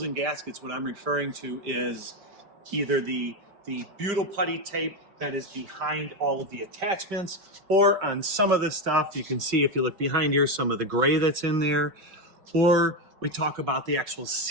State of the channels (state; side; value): late; left; 5.5 ms